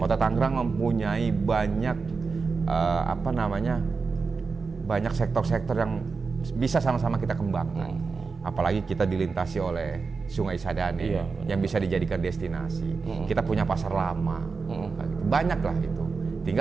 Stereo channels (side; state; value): left; quieter; 4.7 dB